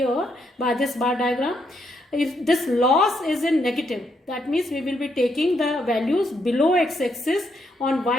by this bar diagram. If this loss is in negative, that means we will be taking the values below x-axis on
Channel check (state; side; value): normal; both; correlation 0.77